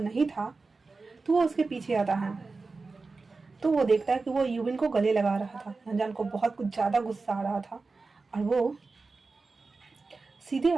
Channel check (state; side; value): quieter; left; 4.0 dB